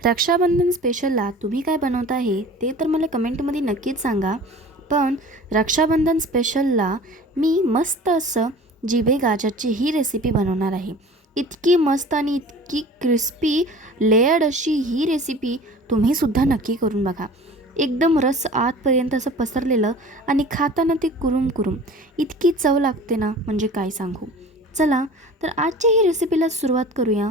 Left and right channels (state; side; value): normal; both; correlation 0.42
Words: रक्षाबंधन स्पेशलला तुम्ही काय बनवत आहे ते तर मला कमेंटमध्ये नक्कीच सांगा. पण रक्षाबंधन स्पेशलला मी मस्त असं जिभे गाजरची ही रेसिपी बनवणार आहे. इतकी मस्त आणि इतकी क्रिस्पी लेयर्ड अशी ही रेसिपी तुम्हीसुद्धा नक्की करून बघा. एकदम रस आतपर्यंत असं पसरलेलं आणि खाताना ते कुरुम कुरुम इतकी चव लागते ना, म्हणजे काय सांगू. चला तर आजच्या ही रेसिपीला सुरुवात करूया